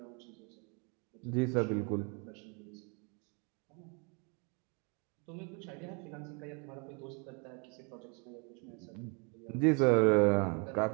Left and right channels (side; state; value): left; quieter; 34.4 dB